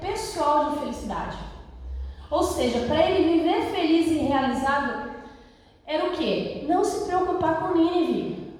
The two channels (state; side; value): identical; both; correlation 1.00